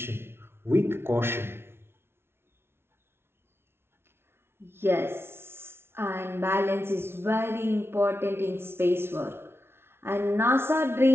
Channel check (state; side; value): late; left; 0.12 ms